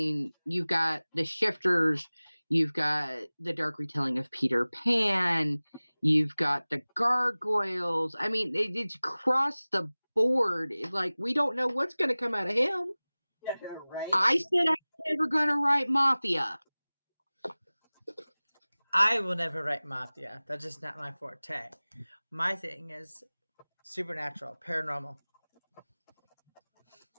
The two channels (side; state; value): both; inverted; correlation -0.99